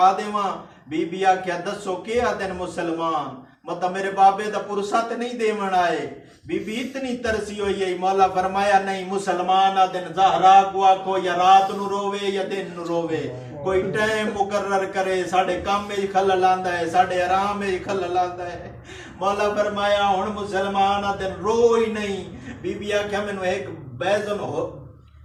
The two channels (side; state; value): both; identical; correlation 1.00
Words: دیواں. بی بی آکھیا دسو کیا دن مسلمان, مطلب میرے بابے دا پرسا تے نہیں دیون آئے. بی بی اتنی ترسی ہوئی ہے. مولا فرمایا نہیں, مسلمان دن زہرا کو آکھو یا رات نو روے یا دن نو روے, کوئی ٹائم مقرر کرے. ساڑھے کام میں خلل آندا ہے, ساڑھے آرام میں خلل آندا ہے. مولا فرمایا ہن مسلمان دن رو ہی نہیں. بی بی آکھیا مینوں ایک بیزن ہو